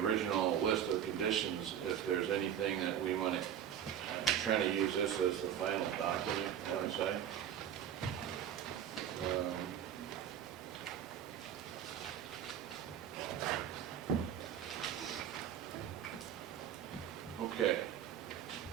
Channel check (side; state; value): left; quieter; 9.7 dB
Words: list of conditions, if there's anything that we want to, I'm trying to use this as the final document, you know what I'm saying? Okay.